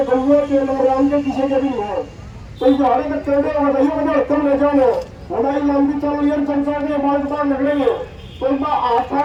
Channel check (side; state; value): both; identical; correlation 1.00